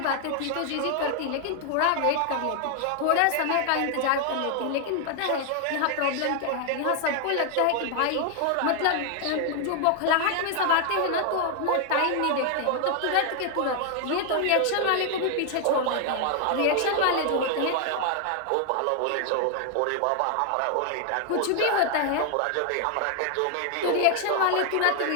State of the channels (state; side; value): different; both; correlation 0.00